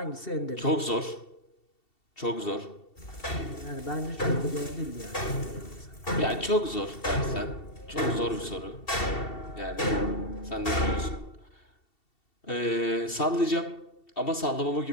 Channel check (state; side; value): late; right; 2.7 ms